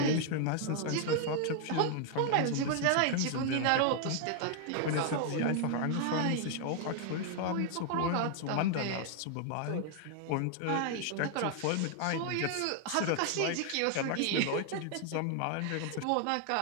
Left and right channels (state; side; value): different; both; correlation 0.00